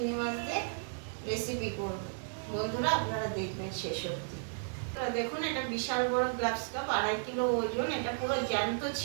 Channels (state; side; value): silent; left; digital silence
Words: মাছ দিয়ে রেসিপি করব। বন্ধুরা আপনারা দেখবেন শেষ অবধি। দেখুন, এটা বিশাল বড় গ্লাস কাপ, 2.5 কিলো ওজন। এটা পুরো জ্যান্ত